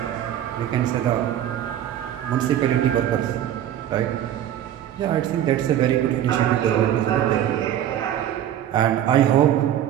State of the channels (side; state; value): left; quieter; 11.2 dB